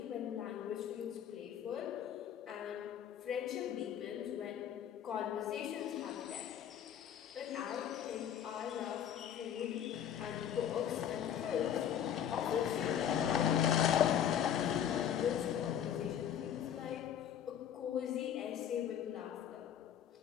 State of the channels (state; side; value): quieter; right; 9.5 dB